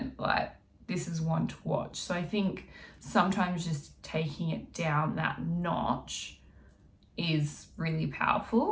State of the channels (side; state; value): both; identical; correlation 1.00